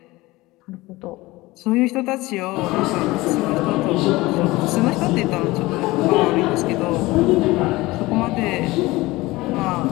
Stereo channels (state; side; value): quieter; right; 20.2 dB